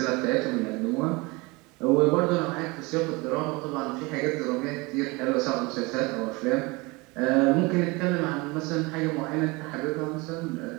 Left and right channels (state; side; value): quieter; left; 25.3 dB